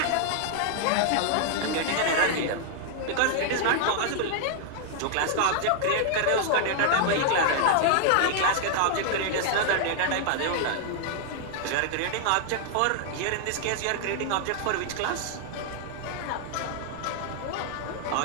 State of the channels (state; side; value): different; both; correlation 0.00